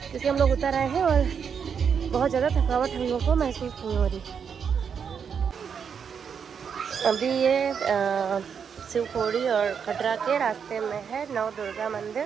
हम लोग उतर आए हैं और बहुत ज़्यादा थकावट हम लोग को महसूस नहीं हो रही। अभी ये शिवखोड़ी और कटरा के रास्ते में है नव दुर्गा मंदिर।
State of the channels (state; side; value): quieter; left; 6.9 dB